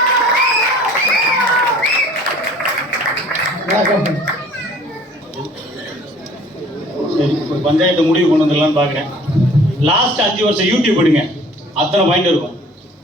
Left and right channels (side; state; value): both; normal; correlation 0.51